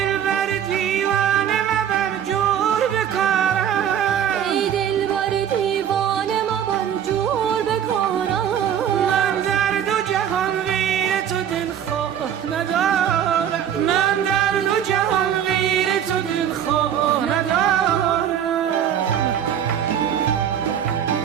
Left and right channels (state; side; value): quieter; left; 9.4 dB